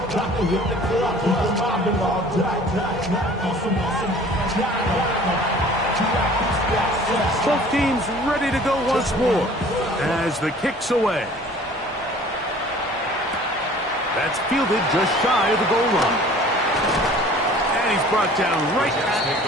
Both teams ready to go once more as the kick's away. That's fielded just shy of the goal line. And he's brought down right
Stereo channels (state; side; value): normal; both; correlation 0.49